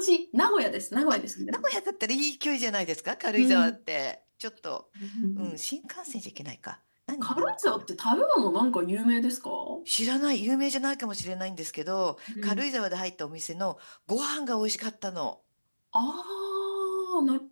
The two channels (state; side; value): inverted; both; correlation -1.00